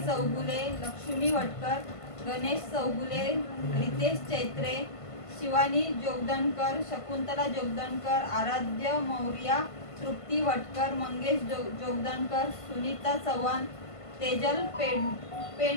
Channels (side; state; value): right; late; 1.5 ms